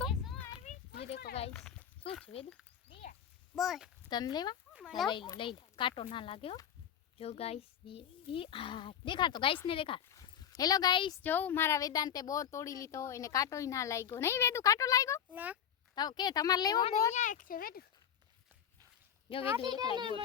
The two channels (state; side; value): quieter; right; 9.0 dB